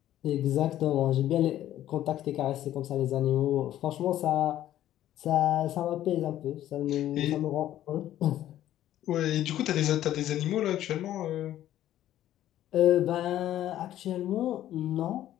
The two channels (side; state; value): right; quieter; 12.7 dB